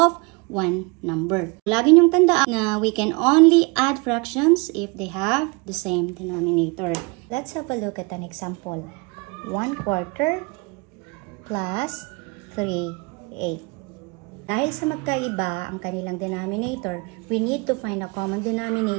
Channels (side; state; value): left; quieter; 28.9 dB